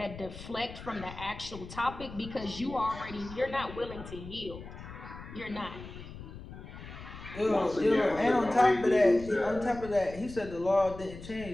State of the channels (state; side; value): noise; left; rumble, 13 dB below the sound